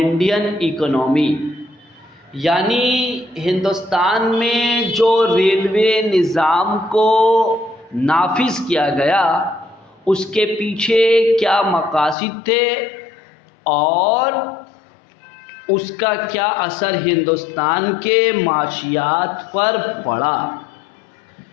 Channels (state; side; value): drops out; right; at 12.2 s